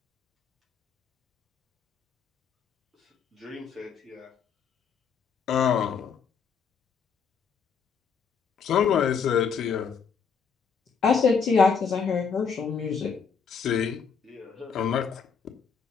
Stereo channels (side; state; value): right; quieter; 6.2 dB